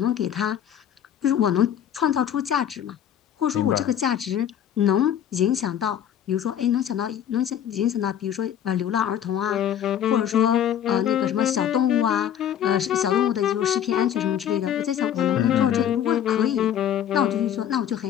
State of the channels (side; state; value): right; quieter; 9.8 dB